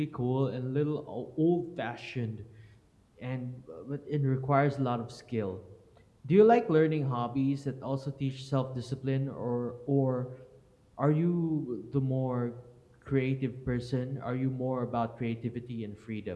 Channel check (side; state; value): both; identical; correlation 1.00